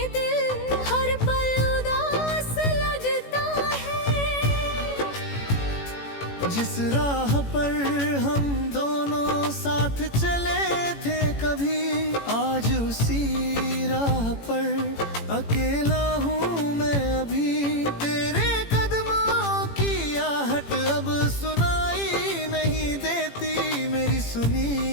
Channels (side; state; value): right; late; 18 ms